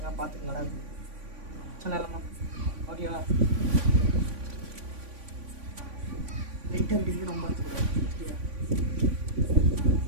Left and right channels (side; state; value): left; late; 3.5 ms